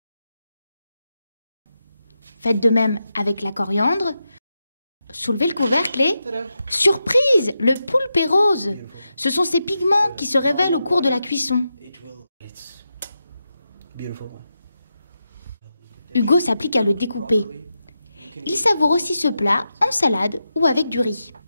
Faites de même avec la coriandre. Soulevez le couvercle et... Surprise! Le poulpe est rose. Ce sont ces pigments qui se révèlent au cours de la cuisson. Hugo s'applique à le découper. Il savoure aussi ce plat en salade ou avec du riz.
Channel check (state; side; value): inverted; both; correlation -0.88